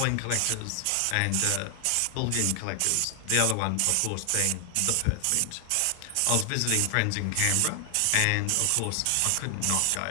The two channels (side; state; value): both; different; correlation 0.00